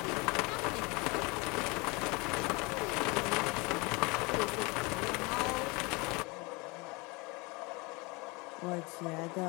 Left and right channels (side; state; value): right; quieter; 26.8 dB